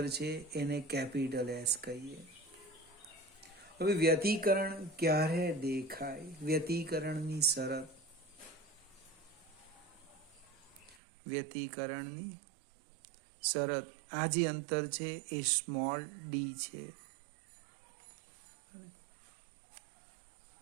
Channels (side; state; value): left; drops out; at 11.0 s